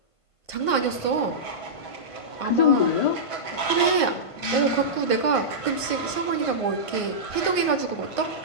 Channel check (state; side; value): late; right; 1.5 ms